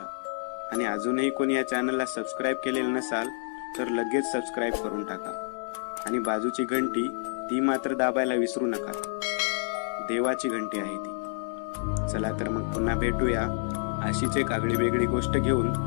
आणि अजूनही कोणी या चॅनलला सबस्क्राईब केलेलं नसाल तर लगेच सबस्क्राईब करून टाका. आणि बाजूची घंटी ती मात्र दाबायला विसरू नका. देवाची घंटी आहे ती. चला तर मग पुन्हा भेटूया अशीच एक आगळी वेगळी गोष्ट घेऊन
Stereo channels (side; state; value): right; silent; digital silence